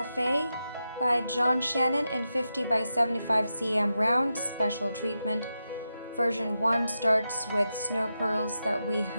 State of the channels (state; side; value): inverted; both; correlation -0.89